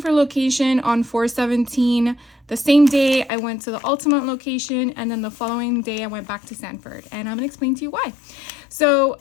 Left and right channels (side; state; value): right; drops out; at 3.3 s